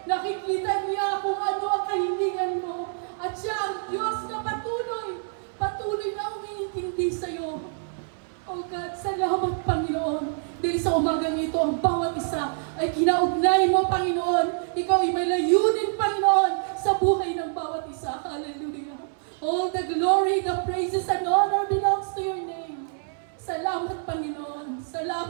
Nakikita niya kung ano ang kahilingan mo. At siya ang Diyos na patuloy na umiintindi sa'yo. Oh God, salamat Panginoon. Dahil sa umagang ito, ang bawat isa ay kinaugnay mo, Panginoon. Ikaw ay may layunin, Panginoon, sa buhay ng bawat isa. Hallelujah. All the glory, the praises, and honor belongs to your name. Salamat, Panginoon.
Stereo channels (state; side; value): silent; left; 61 dB below the other